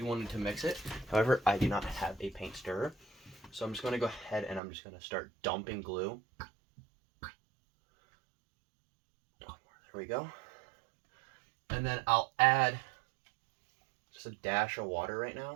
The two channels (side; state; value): left; drops out; at 4.6 s